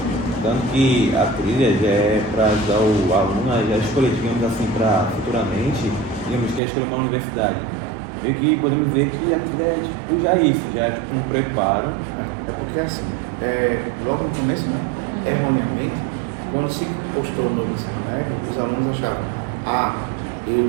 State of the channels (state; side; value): drops out; left; at 6.6 s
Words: Tanto que a trilha já é para ajudar o aluno a já escolher, digamos assim, para futuramente, digamos, quer escolher uma universidade. E que podemos dizer que a trilha é tipo já isso, já é tipo um preparo. É porque assim, logo no começo, né? Erroneamente, quando se postou no ensino médio, os alunos achavam,